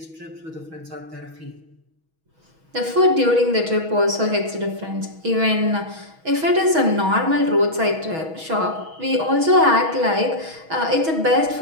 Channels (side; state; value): left; late; 6.2 ms